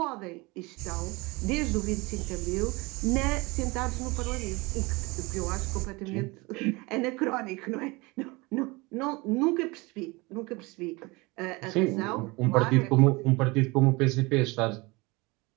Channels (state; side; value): quieter; left; 24.6 dB